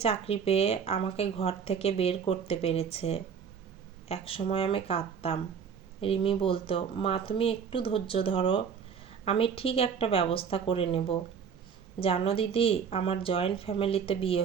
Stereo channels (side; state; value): left; quieter; 6.8 dB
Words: চাকরি পেয়ে আমাকে ঘর থেকে বের করতে পেরেছে। এক সময় আমি কাঁদতাম। রিমি বলতো, মা তুমি একটু ধৈর্য ধরো, আমি ঠিক একটা ব্যবস্থা করে নেব। জানো দিদি, আমার জয়েন্ট ফ্যামিলিতে বিয়ে